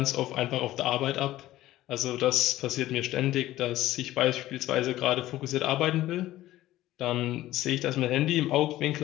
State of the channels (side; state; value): right; quieter; 15.2 dB